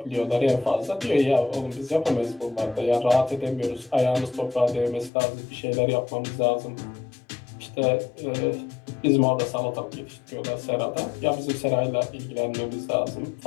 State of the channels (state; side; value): drops out; right; at 5.1 s